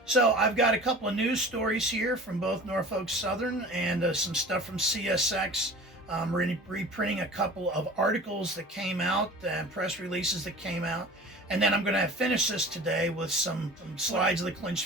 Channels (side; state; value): both; normal; correlation 0.40